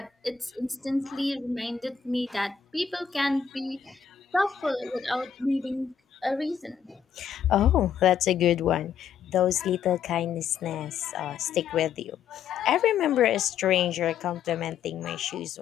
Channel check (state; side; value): quieter; right; 7.6 dB